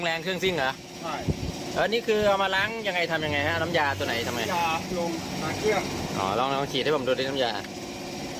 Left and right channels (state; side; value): identical; both; correlation 1.00